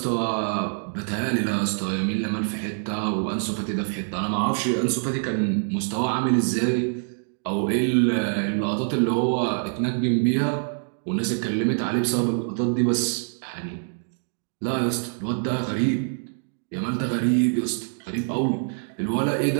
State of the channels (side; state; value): left; silent; 62 dB below the other